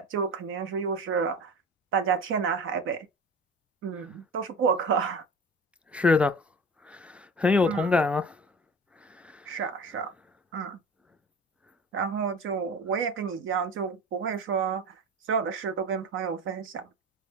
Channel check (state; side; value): normal; both; correlation 0.35